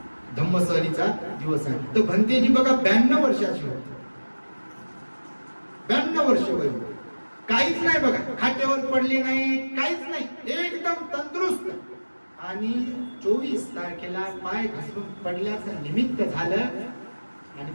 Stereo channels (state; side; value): inverted; both; correlation -1.00